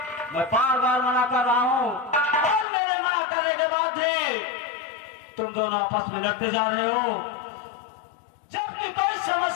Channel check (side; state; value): right; drops out; at 2.7 s